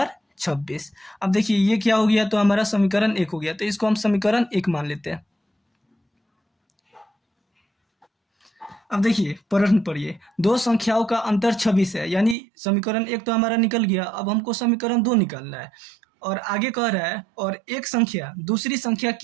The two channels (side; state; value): left; drops out; at 12.4 s